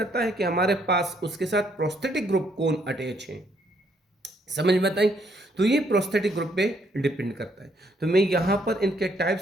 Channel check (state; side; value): normal; both; correlation 0.70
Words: है कि हमारे पास उसके साथ प्रोस्थेटिक ग्रुप कौन अटैच है। समझ में बताई। तो ये प्रोस्थेटिक ग्रुप पे डिपेंड करता है। तो मैं यहाँ पर इनके